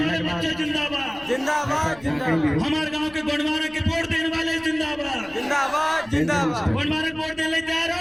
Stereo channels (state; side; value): noise; left; rumble, 23 dB below the sound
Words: बच्चे जिंदाबाद जिंदाबाद जिंदाबाद। हमारे गांव के गुणवाना के वोट देने वाले जिंदाबाद जिंदाबाद जिंदाबाद। गुणवाना के वोट देने तैयार हो?